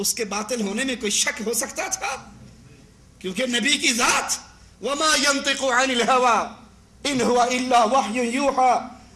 کے باطل ہونے میں کوئی شک ہو سکتا تھا؟ کیونکہ نبی کی ذات وما ينطق عن الهوى ان هو الا وحی یوحى،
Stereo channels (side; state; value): both; identical; correlation 1.00